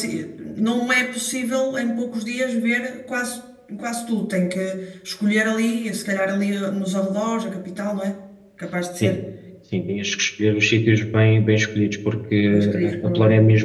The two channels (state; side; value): identical; both; correlation 1.00